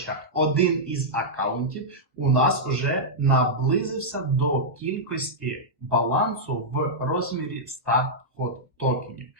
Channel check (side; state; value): both; normal; correlation -0.08